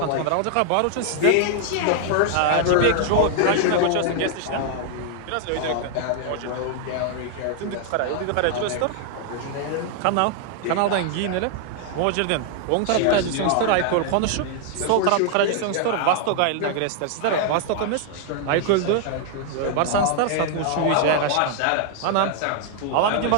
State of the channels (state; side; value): different; both; correlation 0.00